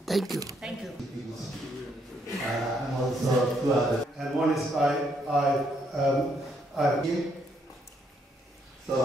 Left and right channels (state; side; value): normal; both; correlation 0.73